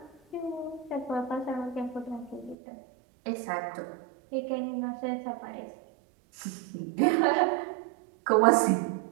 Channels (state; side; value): drops out; left; at 2.6 s